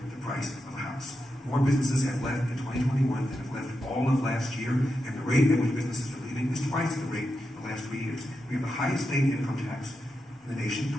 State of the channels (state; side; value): normal; both; correlation 0.88